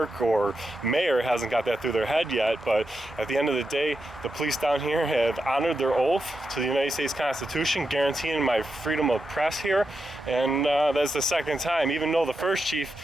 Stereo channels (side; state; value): both; normal; correlation 0.87